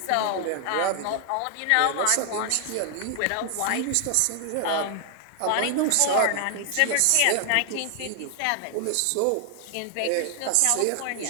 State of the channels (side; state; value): both; different; correlation 0.00